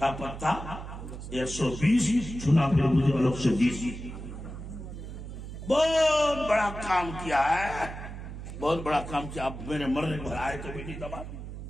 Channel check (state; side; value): noise; right; hum, 10 dB below the sound